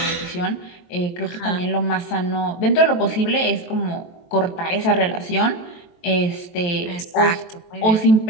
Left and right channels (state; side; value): late; right; 23 ms